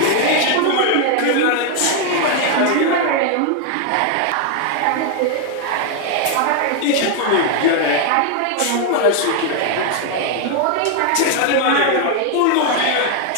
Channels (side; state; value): both; different; correlation 0.00